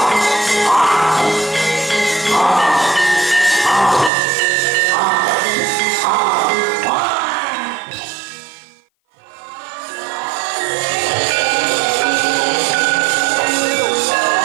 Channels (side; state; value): left; drops out; at 4.1 s